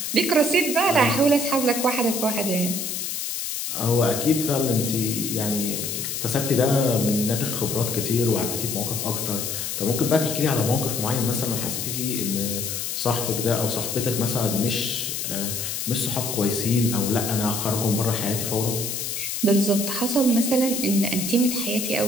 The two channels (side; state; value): left; noise; hiss, 3 dB below the sound